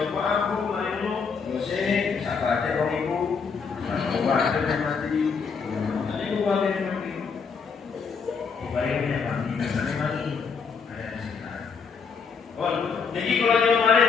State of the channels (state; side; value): quieter; right; 5.6 dB